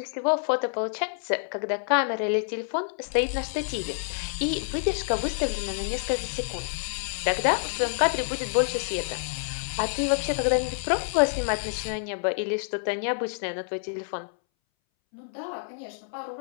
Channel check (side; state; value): right; silent; 60 dB below the other